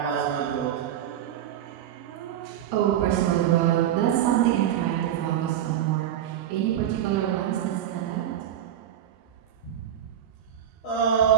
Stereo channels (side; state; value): left; quieter; 10.7 dB